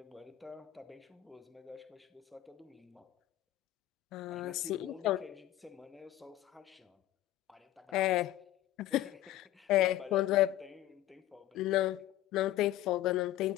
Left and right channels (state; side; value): quieter; right; 14.2 dB